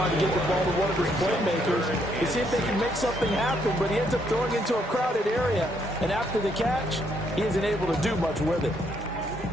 to get the ball to one of his playmakers to see if they can make something happen, but he ends up throwing into a crowded area. And after the catch, he isn't able to do much with it.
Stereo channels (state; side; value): normal; both; correlation 0.73